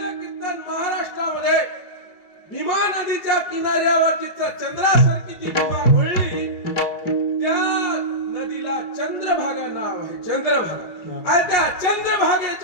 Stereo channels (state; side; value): late; right; 5.5 ms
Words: कीर्तन महाराष्ट्रामध्ये भीमा नदीच्या किनाऱ्यावर जिथं चंद्रासारखी ती भीमा वळली त्या नदीला चंद्रभागा नाव आहे चंद्रभागा आणि त्या